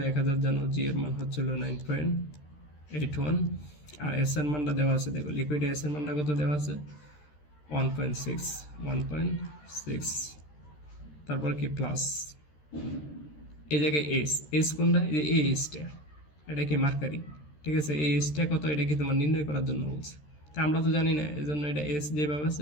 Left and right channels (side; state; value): right; late; 13 ms